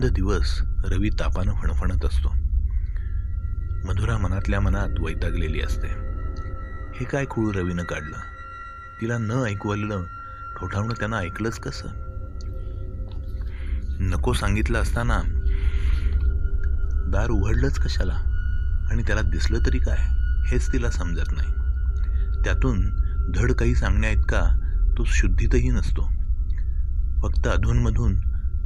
दिवस रवी तापानं फणफणत असतो. मधुरा मनातल्या मनात वैतागलेली असते. हे काय खूळ रवीनं काढलं? तिला न ऐकवलेलं ठोठावणं त्यानं ऐकलंच कसं? नको सांगितलं असताना दार उघडलंच कशाला? आणि त्याला दिसलं तरी काय हेच तिला समजत नाही. त्यातून धड काही सांगण्या इतका तो शुद्धीतही नसतो. फक्त अधूनमधून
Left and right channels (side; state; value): both; identical; correlation 1.00